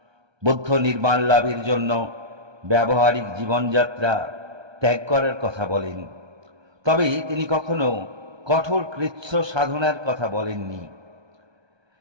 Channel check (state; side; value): late; left; 1.2 ms